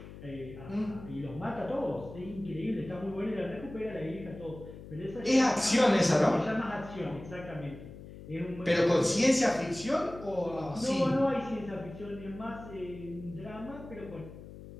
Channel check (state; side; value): noise; left; hum, 15 dB below the sound